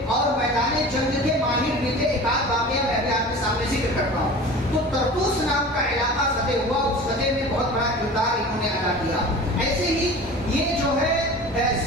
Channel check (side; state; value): both; normal; correlation 0.38